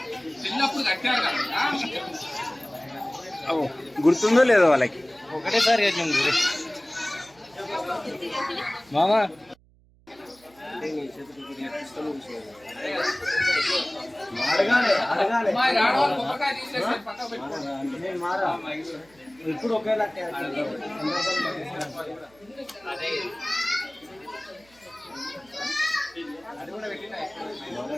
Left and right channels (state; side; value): noise; right; hum, 30 dB below the sound